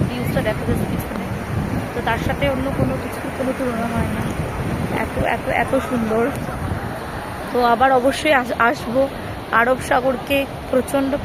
ভিউজটা, দেখো যাচ্ছে পিছনে, তো তার সাথে অন্য কোনো কিছুর কোনো তুলনা হয় না। এত এত এত সুন্দর। তো আবার অবশ্যই আসবো। আরব সাগরকে প্রচণ্ড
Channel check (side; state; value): both; identical; correlation 1.00